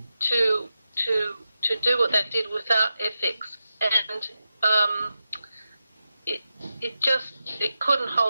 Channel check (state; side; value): inverted; both; correlation -0.90